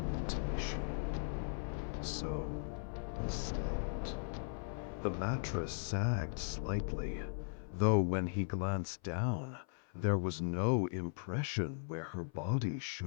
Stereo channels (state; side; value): silent; right; 52 dB below the other